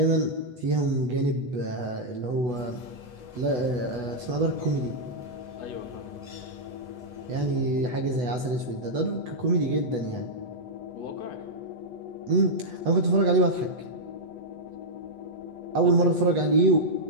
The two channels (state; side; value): late; left; 8.1 ms